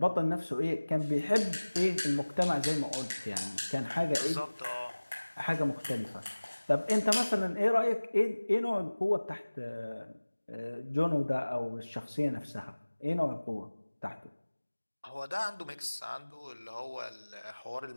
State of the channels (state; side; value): inverted; both; correlation -1.00